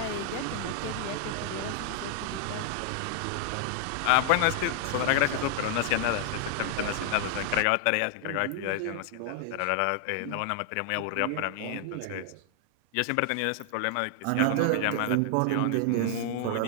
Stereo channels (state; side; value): different; both; correlation 0.00